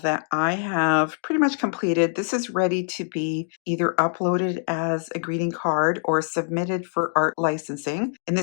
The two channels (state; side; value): silent; right; digital silence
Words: I have pretty much completed. This is ready to be either uploaded as a greeting card or submitted for art licensing. In